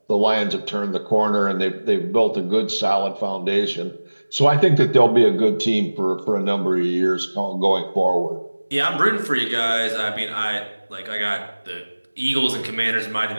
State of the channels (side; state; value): both; inverted; correlation -1.00